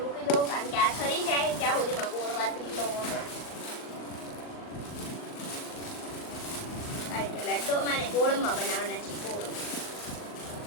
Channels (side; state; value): right; late; 38 ms